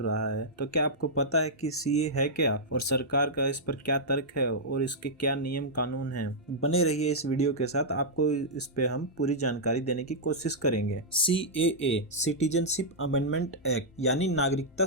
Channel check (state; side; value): normal; both; correlation -0.09